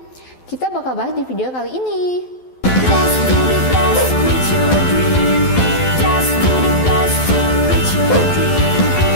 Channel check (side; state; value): right; late; 12 ms